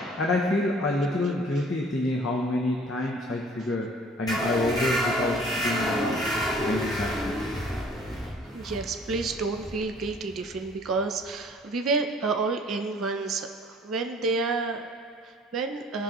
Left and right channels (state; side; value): normal; both; correlation 0.54